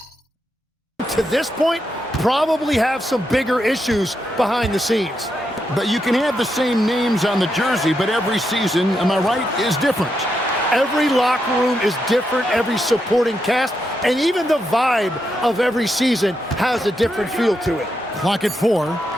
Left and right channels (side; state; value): both; normal; correlation 0.83